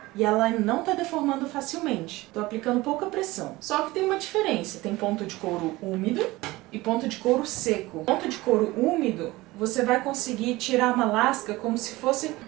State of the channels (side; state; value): left; quieter; 19.8 dB